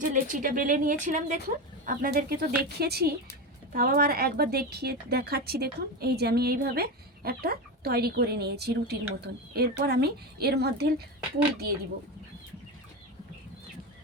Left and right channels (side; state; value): both; normal; correlation 0.19